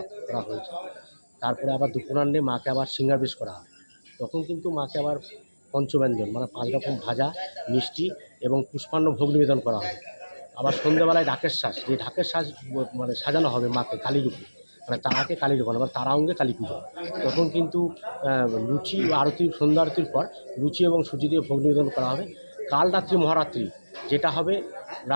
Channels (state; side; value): inverted; both; correlation -1.00